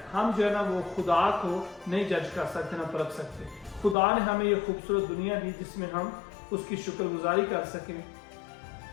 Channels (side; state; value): right; drops out; at 4.0 s